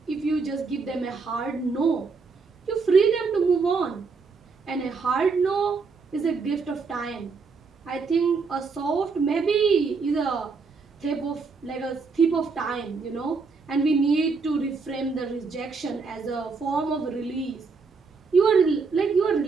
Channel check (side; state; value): left; quieter; 4.7 dB